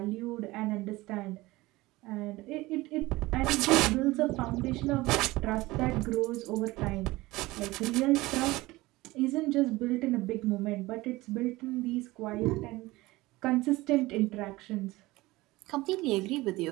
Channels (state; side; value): quieter; left; 19.8 dB